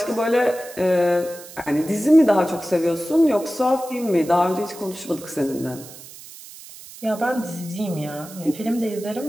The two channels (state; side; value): noise; right; hiss, 17 dB below the sound